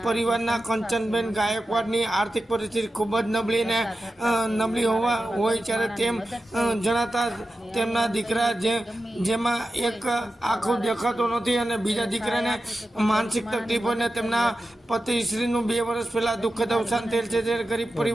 પરિવારના કંચનબેન ગાયકવાડની આર્થિક પરિસ્થિતિ ખૂબ જ નબળી હોય ત્યારે તેમ જણાતા તેમના દીકરા જેમાં એક આંખો દેખાતો નથી અને બીજા દીકરાને માનસિક તકલીફ અને તેમના પતિશ્રીનું 2 વર્ષ પહેલાં દુઃખદ અવસાન થયેલ છે। ત્યારે ગરીબ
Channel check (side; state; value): both; normal; correlation 0.92